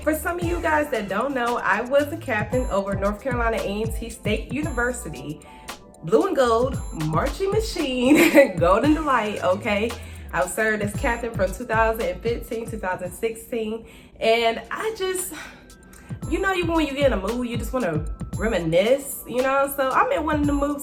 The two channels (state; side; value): identical; both; correlation 1.00